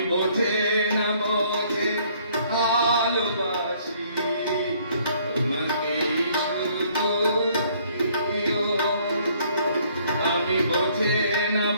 বোঝে না বোঝে ভালোবাসি, আমি বোঝে না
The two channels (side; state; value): both; inverted; correlation -0.62